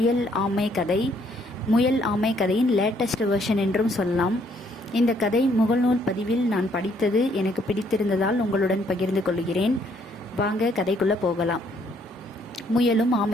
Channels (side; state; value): both; normal; correlation 0.68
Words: ஆமை கதை. முயல் ஆமை கதையின் லேட்டஸ்ட் வெர்ஷன் என்றும் சொல்லலாம். இந்த கதை முகநூல் பதிவில் நான் படித்தது எனக்கு பிடித்திருந்ததால் உங்களுடன் பகிர்ந்து கொள்கிறேன். வாங்க கதைக்குள்ளே போகலாம். முயலும்